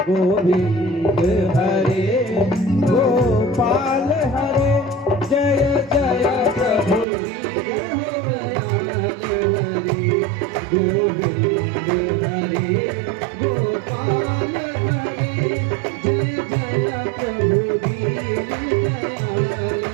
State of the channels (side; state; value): left; drops out; at 7.1 s